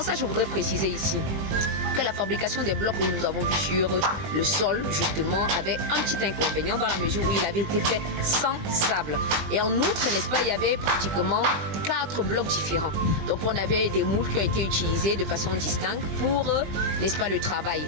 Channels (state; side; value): late; left; 20 ms